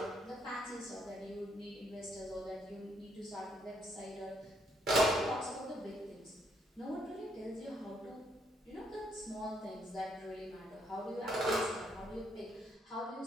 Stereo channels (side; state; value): both; normal; correlation 0.72